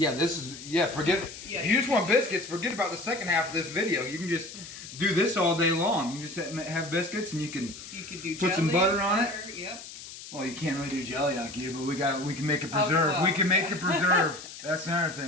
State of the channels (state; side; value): noise; left; hiss, 13 dB below the sound